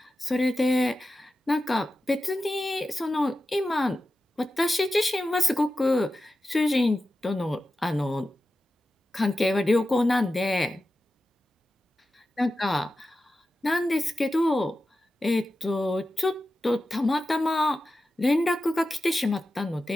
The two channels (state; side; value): normal; both; correlation 0.92